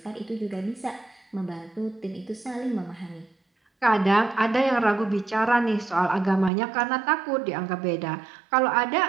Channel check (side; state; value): left; drops out; at 6.5 s